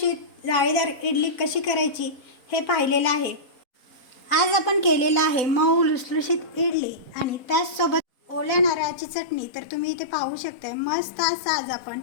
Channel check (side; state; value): right; late; 4.0 ms